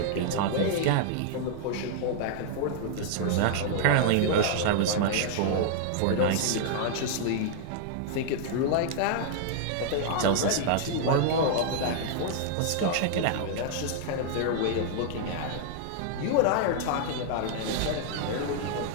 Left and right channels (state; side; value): different; both; correlation -0.01